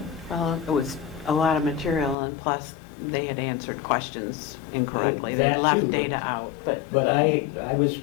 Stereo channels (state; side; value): drops out; right; at 2.1 s